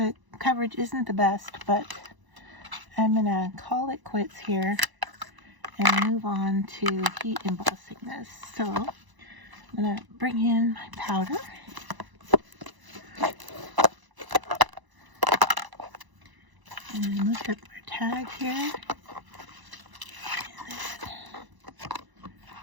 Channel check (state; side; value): late; left; 1.0 ms